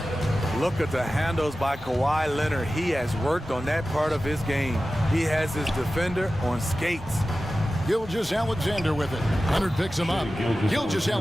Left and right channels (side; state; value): both; normal; correlation 0.95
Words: Look at the handles by Kawhi Leonard. He has worked on that part of his game. He has his defender on skates. Gilgeous-Alexander with it. Leonard picks him up.